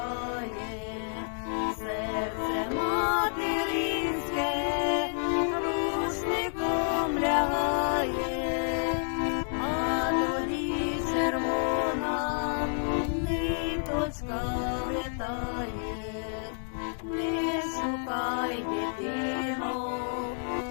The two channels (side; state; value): right; silent; digital silence